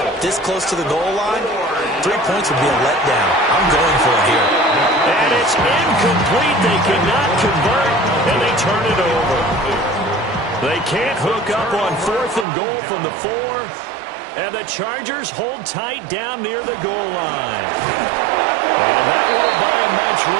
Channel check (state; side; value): drops out; left; at 12.5 s